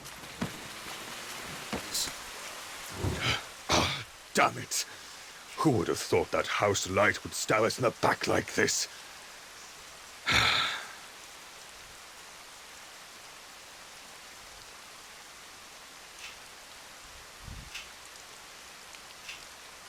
person. Damn it! Who would have thought that house light would stab us in the back like this?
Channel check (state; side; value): identical; both; correlation 1.00